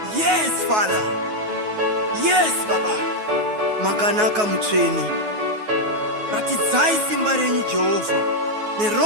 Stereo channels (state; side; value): late; left; 9.4 ms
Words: Yes, Father. Yes, Baba. Makanaka mutweni. Ratidzai simba renyu Jehovah.